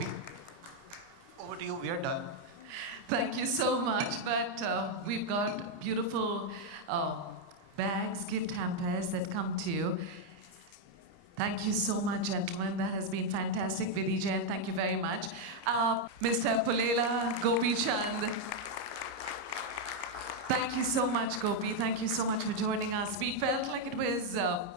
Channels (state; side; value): late; left; 30 ms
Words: Over to you, we are done. Thank you so much. But we've got beautiful bags, gift hampers that come to you. Thank you so much, gentlemen. That has been fantastic. Vidhi Jain, thank you very much. Mr. Pulela, Gopi Chand. Thank you so much, Gopi. Thank you so much for joining us. We felt like it was